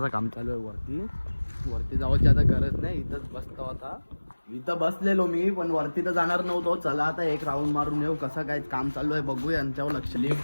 काम चालू आहे वरती. वरती जावायची आता गरज नाही. इथंच बसतो आता. इथं बसलेलो मी पण वरती तर जाणार नव्हतो. चला आता 1 राऊंड मारून येऊ. कसं काय काम चालू आहे बघू. यांच्यावर लक्ष.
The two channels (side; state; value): both; inverted; correlation -1.00